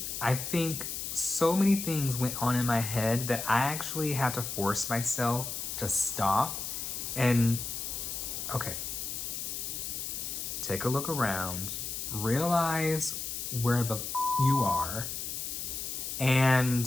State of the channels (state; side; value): noise; left; hiss, 5 dB below the sound